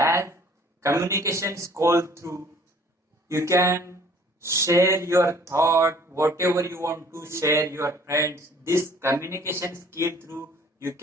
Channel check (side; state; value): both; normal; correlation 0.55